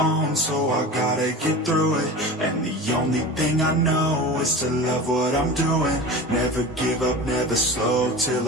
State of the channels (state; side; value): normal; both; correlation 0.32